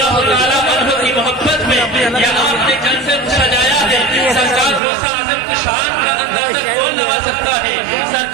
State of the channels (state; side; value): drops out; left; at 4.8 s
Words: तआला अन्हु की मोहब्बत में यहाँ अपने जलसे को सजाया है। सरकार गौसे आज़म की शान का अंदाज़ा कौन लगा सकता है?